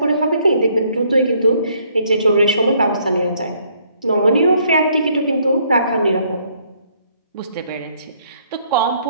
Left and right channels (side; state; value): both; inverted; correlation -0.67